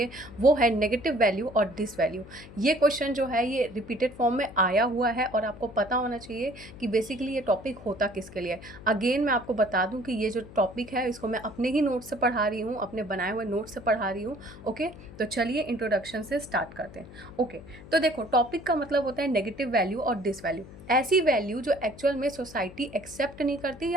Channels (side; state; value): left; noise; hum, 17 dB below the sound